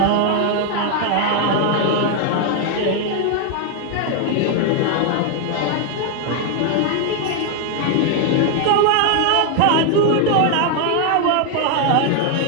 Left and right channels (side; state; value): both; different; correlation 0.01